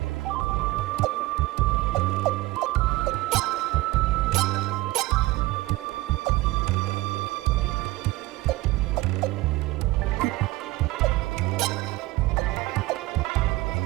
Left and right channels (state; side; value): quieter; left; 19.4 dB